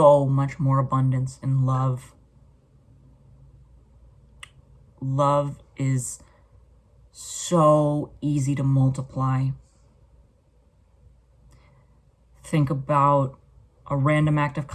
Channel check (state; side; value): identical; both; correlation 1.00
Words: much more abundance in love. Love is so easy to multiply. Think about a random act of